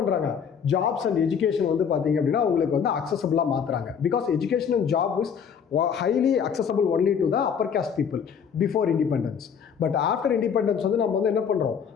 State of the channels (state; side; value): quieter; right; 7.2 dB